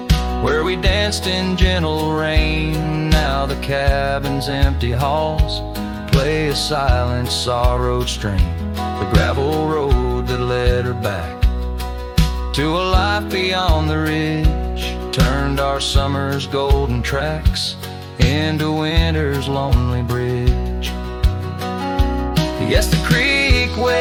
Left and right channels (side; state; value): both; identical; correlation 1.00